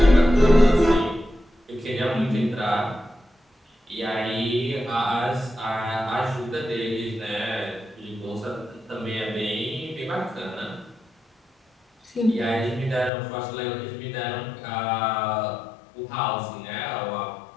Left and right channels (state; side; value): drops out; right; at 13.1 s